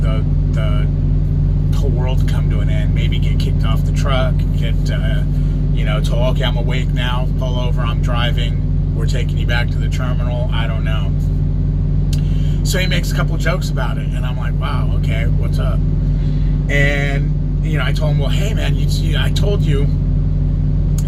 the whole world to come to an end. Maybe get kicked off the truck, get, told, okay, I'm awake now, pull over, I'm driving, we're taking you back to the terminal. I don't know. So he makes a couple jokes about it, and I'm like, wow, okay, what's up? And, I told him, well, hey, man, I told you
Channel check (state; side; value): identical; both; correlation 1.00